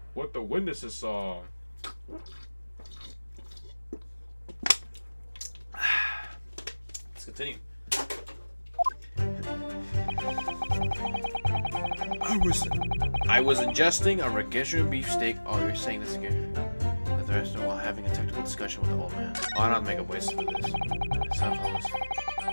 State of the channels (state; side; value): inverted; both; correlation -1.00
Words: What the witnesses saw. Let's continue. I was ingesting a Registration beefsteak. Oh, you're saying this again. At the restaurant while having a technical discussion with the old man. Oh, I don't make a voice for this.